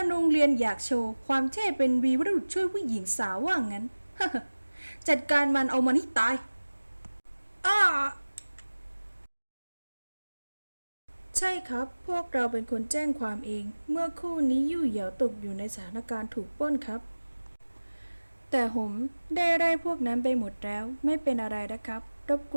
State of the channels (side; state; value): both; inverted; correlation -1.00